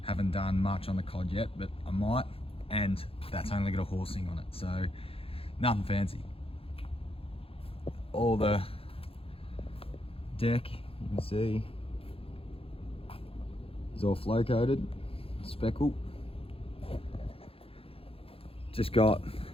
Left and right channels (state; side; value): late; right; 0.27 ms